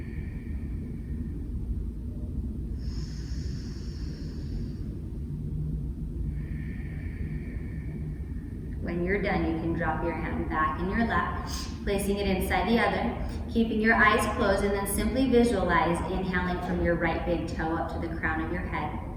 When you're done, you can drop your hand back in your lap, placing it inside the other, keeping your eyes closed, and then simply visualize inhaling from your right big toe up to the crown of your head.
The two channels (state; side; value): identical; both; correlation 1.00